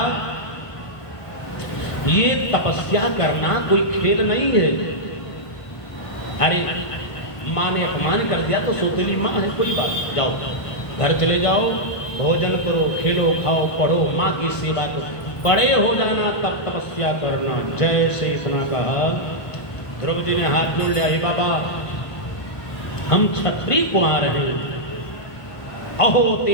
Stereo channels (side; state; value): right; late; 1.5 ms